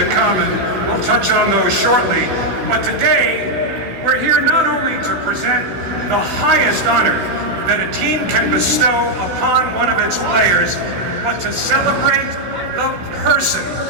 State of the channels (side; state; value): left; late; 16 ms